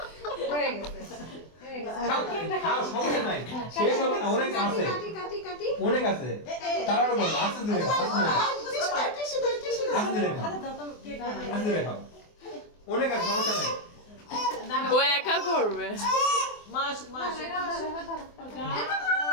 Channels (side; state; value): right; late; 24 ms